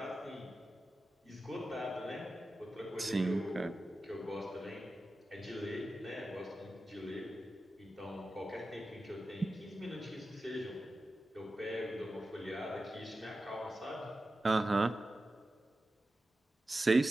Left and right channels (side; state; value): both; normal; correlation 0.93